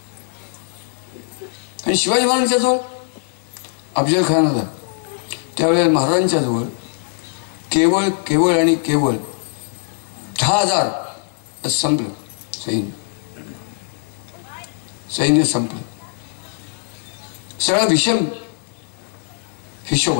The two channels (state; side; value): silent; right; digital silence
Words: आणि शिवाजी महाराजांच्या जवळ अफजल खान होता. त्यावेळेला महाराजांच्या जवळ केवळ आणि केवळ 10,000 संपलं. सैन्य संपलं. सगळा विषम हिशोब